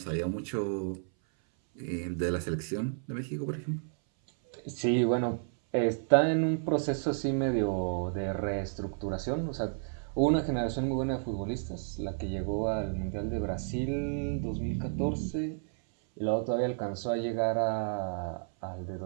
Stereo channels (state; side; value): silent; left; 57 dB below the other